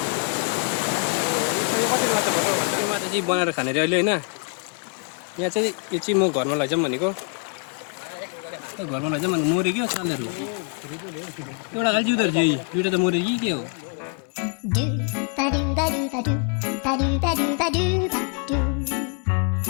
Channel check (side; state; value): right; quieter; 39.6 dB